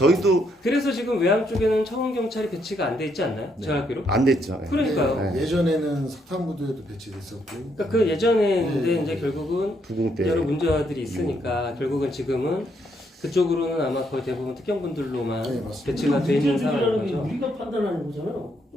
그래서 지금 외항 쪽에는 청원경찰이 배치가 안 돼 있지 않나요? 제가 알기로? 안 됐죠. 네. 그러니까요. 네. 예전에는 석탄부두에도 배치됐었고. 그러니까 그 예전에 근데 이제 결국은 부궁 때 여러 문제들이 있으니까 결국은 지금은 그쪽으로는 아마 거의 대부분 특경분들로만 네, 맞습니다. 배치가 돼 있는 상황인 문제들이라는 게 거죠. 우리가 판단하는 거잖아요.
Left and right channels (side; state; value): both; normal; correlation 0.75